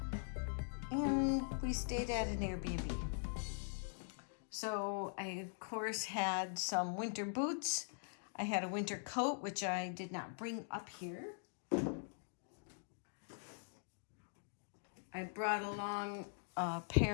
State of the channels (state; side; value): silent; right; digital silence